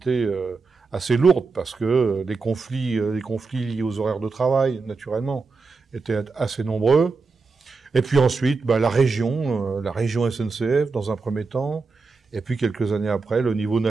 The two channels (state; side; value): quieter; left; 4.3 dB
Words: assez lourde, parce que les conflits liés aux horaires de travail, naturellement, étaient assez nombreux. Et puis ensuite, la région SNCF dans un premier temps, et puis quelques années après, le niveau